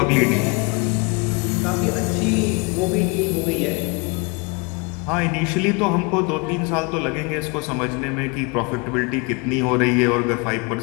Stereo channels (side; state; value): right; quieter; 30.0 dB